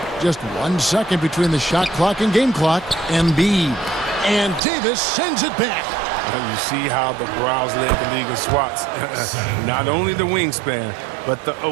Just 1 second between the shot clock and game clock. Embiid. And Davis sends it back. And you see how the Browns led the league in swats. Not only the wingspan, but the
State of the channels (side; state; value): left; drops out; at 4.6 s